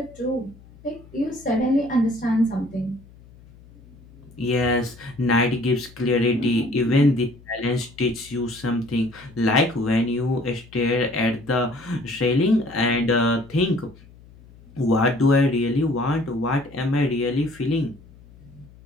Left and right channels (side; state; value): left; noise; hum, 23 dB below the sound